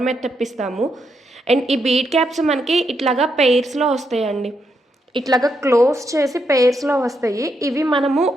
మీద తెప్పిస్తాము. అండ్ ఈ బీట్ క్యాప్స్ మనకి ఇట్లాగా పెయిర్స్‌లో వస్తాయండి. ఇట్లాగా క్లోజ్ చేసి పెయిర్స్‌లో వస్తాయి. ఇవి మనము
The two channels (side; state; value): both; normal; correlation 0.80